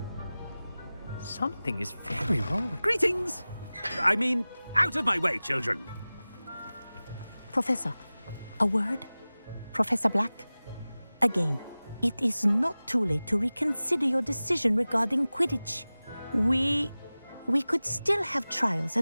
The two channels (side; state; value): both; inverted; correlation -0.98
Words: Something is very wrong. Greetings! I mean, out of my way, children. Professor, a word? Professor Black? Again, it is not too late to reconsider your decision regarding Quidditch. We could still have trials